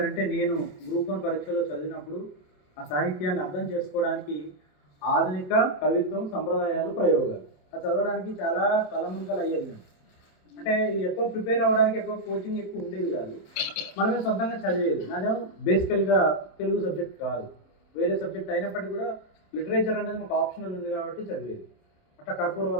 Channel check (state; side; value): late; right; 27 ms